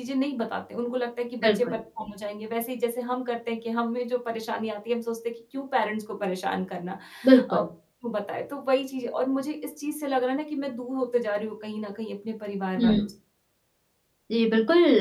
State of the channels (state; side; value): identical; both; correlation 1.00